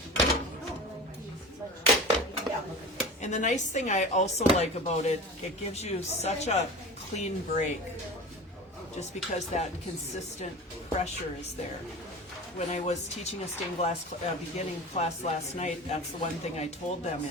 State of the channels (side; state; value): both; normal; correlation 0.34